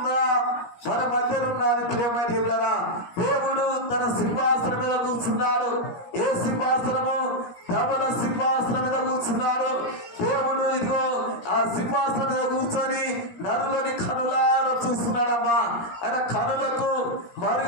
మన మధ్యలో ఉన్నది ప్రియమైన దేవులారా. దేవుడు తన సింహాసనం మీద కూర్చున్నాడు. ఏ సింహాసనము? ధవల సింహాసనం మీద కూర్చున్నాడు దేవుడు. ఇదిగో ఆ సింహాసనం మీద కూర్చొని నరులని కనులారా చూస్తున్నాడమ్మా. ఆయన కనులకు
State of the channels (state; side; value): late; right; 17 ms